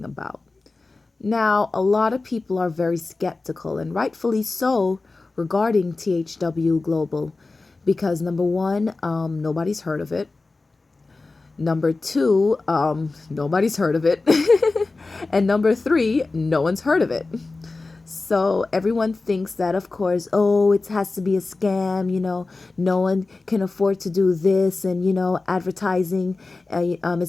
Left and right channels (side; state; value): right; quieter; 3.5 dB